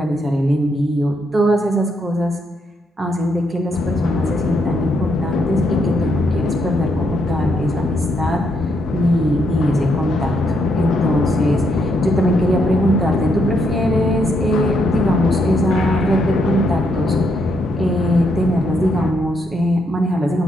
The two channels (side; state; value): both; normal; correlation 0.76